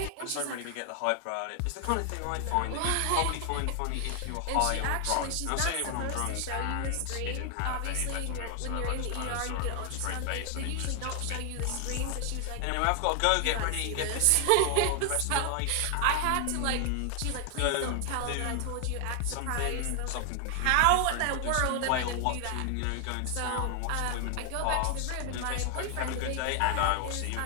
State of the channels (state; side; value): different; both; correlation 0.00